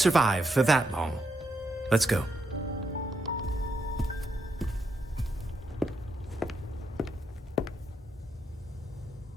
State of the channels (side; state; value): both; normal; correlation 0.81